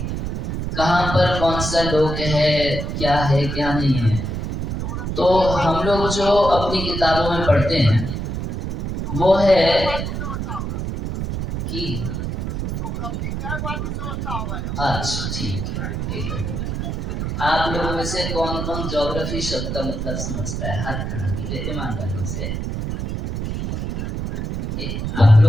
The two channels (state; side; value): noise; right; rumble, 3 dB below the sound